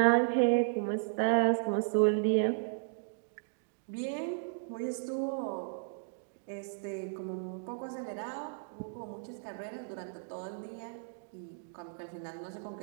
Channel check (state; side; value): silent; left; digital silence